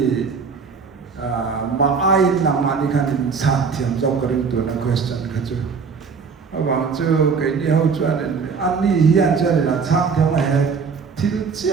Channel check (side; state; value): left; quieter; 5.5 dB